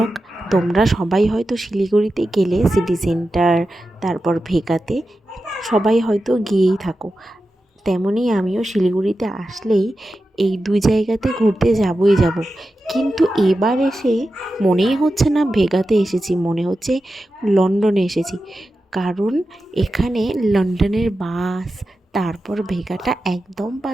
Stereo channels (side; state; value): both; normal; correlation 0.92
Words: তোমরা সবাই হয়তো শিলিগুড়িতে গেলে সিটি সেন্টার, তারপর ভেগাতে সবাই হয়তো গিয়েই থাকো। তেমনই আমিও শিলিগুড়িতে আসলেই এই দুই জায়গাতে ঘুরতে যাবই যাব। কিন্তু এবার এসে মনেই হচ্ছে না ভেগাতে এসেছি, মনে হচ্ছে লন্ডনে এসেছি। কারণ এখানে লন্ডনের বাস, তারপর ভেগাটা একদম